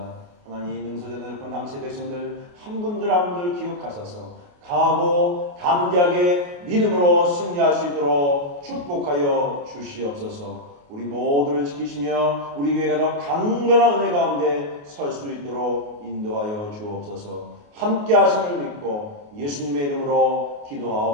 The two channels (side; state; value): left; late; 28 ms